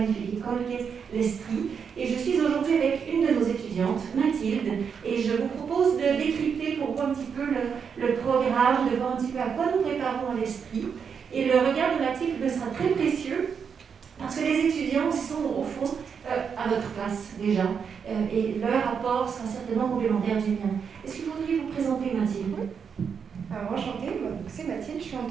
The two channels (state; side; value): quieter; left; 6.6 dB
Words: école qui est l'Estrie. Et je suis aujourd'hui avec une de nos étudiantes, Mathilde, et je vous propose de décrypter pour vous un petit peu le programme, de voir un petit peu à quoi nous préparons à l'Estrie. Et le regard de Mathilde me sera très précieux, parce que les étudiants sont au fond à votre place déjà, et leur apport sera certainement complémentaire du mien. Est-ce que vous voudriez vous présenter, Mathilde? Alors, enchantée, c'est Mathilde, je suis en